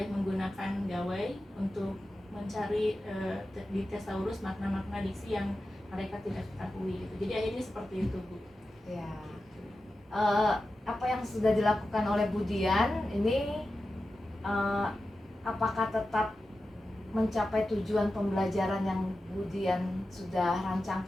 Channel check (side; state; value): both; normal; correlation 0.92